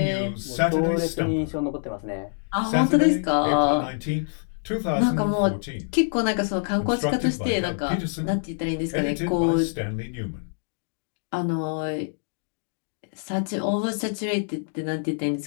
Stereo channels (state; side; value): silent; right; digital silence